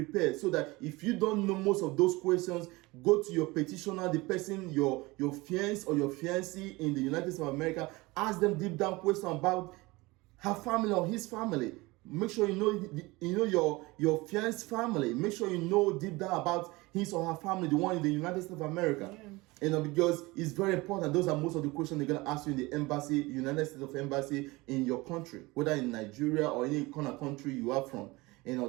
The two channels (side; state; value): left; quieter; 22.3 dB